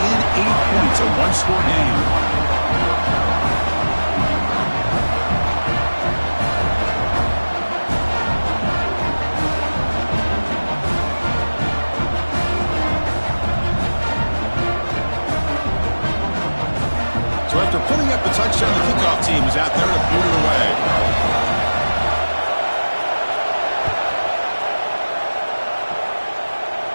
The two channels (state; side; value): inverted; both; correlation -1.00